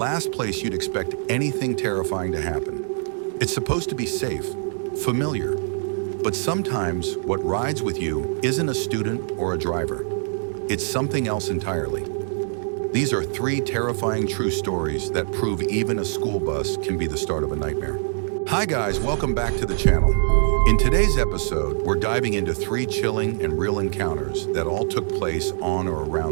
place you'd expect anything terrifying to happen. It's supposed to be safe, familiar, but sometimes what rides with you isn't a student or a driver. It's something else entirely. These are 3 terrifying true stories that prove even a school bus can be the start of a nightmare. Hi guys, welcome back to the channel. In today's episode, we're diving into 3 chilling and real encounters that all took place on or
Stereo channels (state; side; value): silent; left; digital silence